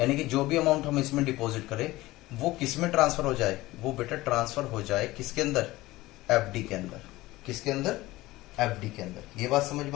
कि जो भी अमाउंट हम इसमें डिपॉजिट करें, वो किस में ट्रांसफर हो जाए, वो बेटा ट्रांसफर हो जाए किसके अंदर, एफडी के अंदर। किसके अंदर, एफडी के अंदर। ये बात समझ में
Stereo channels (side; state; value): right; quieter; 18.5 dB